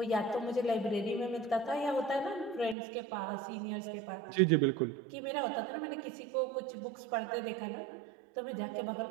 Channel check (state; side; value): drops out; left; at 2.8 s